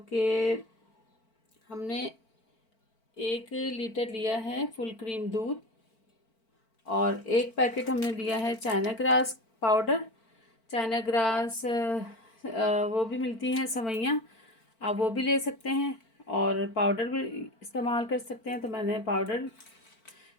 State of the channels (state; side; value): late; right; 4.5 ms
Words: कि हमने 1 लीटर लिया है फुल क्रीम दूध और 1 पैकेट हमने लिया है China grass powder. China grass वो भी मिलती हैं सवैयाँ, आप वो भी ले सकते हैं और पाउडर भी इस्तेमाल कर सकते हैं। तो मैंने पाउडर